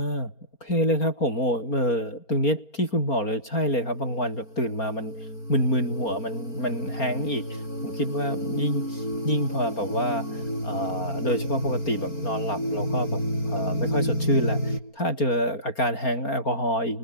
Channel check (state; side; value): late; right; 4.3 ms